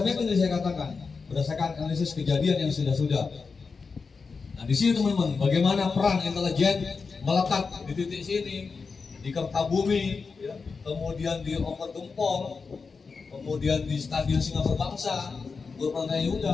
yang saya katakan berdasarkan analisis kejadian yang sudah-sudah. Nah, di sini teman-teman, bagaimana peran intelijen melekat di titik sini, di Kertabumi, ya, kemudian di Oper Gempol, kemudian di Stadion Singapura Bangsa, Purbalingga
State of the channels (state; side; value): quieter; right; 4.8 dB